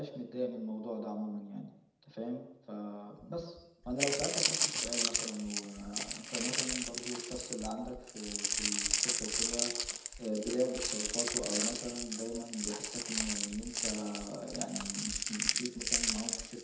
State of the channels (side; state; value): both; identical; correlation 1.00